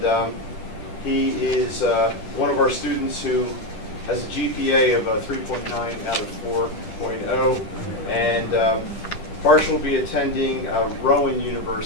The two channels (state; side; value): late; right; 10 ms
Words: he is one of our students who has a GPA of 3.9 out of 4.0, and Harsh will be attending Rowan